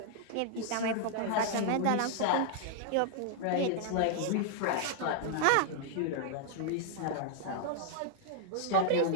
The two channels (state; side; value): different; both; correlation -0.01